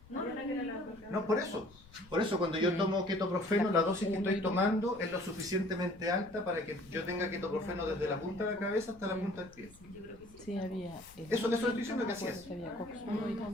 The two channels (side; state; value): left; noise; rumble, 24 dB below the sound